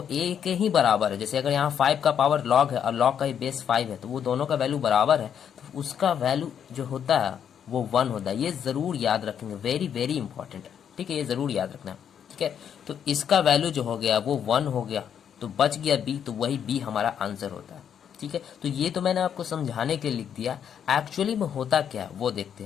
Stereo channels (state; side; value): quieter; right; 8.5 dB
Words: a के ही बराबर है। जैसे अगर यहाँ 5 का पावर log है और log का ये बेस 5 है, तो वो दोनों का वैल्यू बराबर है, तो उसका वैल्यू जो होता है वो 1 होता है। ये जरूर याद रखेंगे, वेरी वेरी इंपॉर्टेंट है। ठीक है, ये जरूर याद रखना। ठीक है, तो इसका वैल्यू जो हो गया वो 1 हो गया, तो बच गया b, तो वही b हमारा आंसर होता है। ठीक है, तो ये तो मैंने आपको समझाने के लिए लिख दिया, एक्चुअली में होता क्या है वो देखते